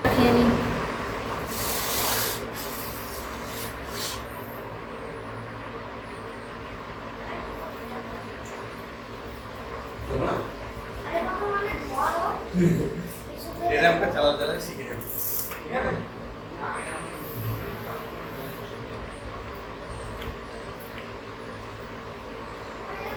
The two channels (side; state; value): both; identical; correlation 1.00